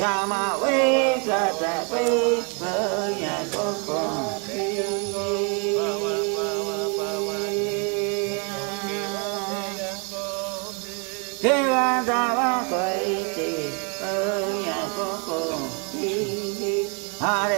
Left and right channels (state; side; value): quieter; left; 36.3 dB